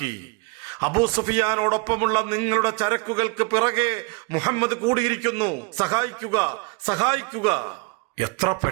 അബൂ സുഫിയാനോടൊപ്പമുള്ള നിങ്ങളുടെ ചരക്കുകൾക്ക് പിറകെ മുഹമ്മദ് കൂടിയിരിക്കുന്നു. സഹായിക്കുക. എത്ര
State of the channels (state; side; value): quieter; left; 29.0 dB